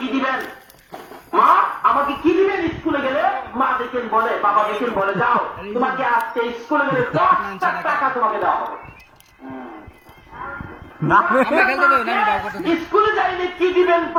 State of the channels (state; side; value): identical; both; correlation 1.00